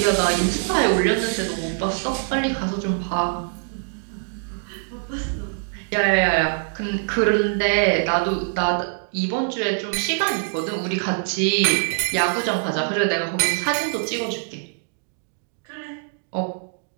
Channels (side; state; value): left; silent; digital silence